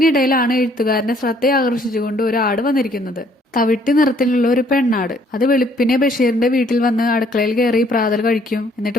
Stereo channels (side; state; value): both; normal; correlation 0.63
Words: എഴുത്തുകാരന്റെ ശ്രദ്ധ ആകർഷിച്ചുകൊണ്ട് ഒരു ആട് വന്നിരിക്കുന്നത്. തവിട്ട് നിറത്തിലുള്ള ഒരു പെണ്ണാട്. അത് വെളുപ്പിനെ ബഷീറിന്റെ വീട്ടിൽ വന്ന് അടുക്കളയിൽ കയറി പ്രാതൽ കഴിക്കും.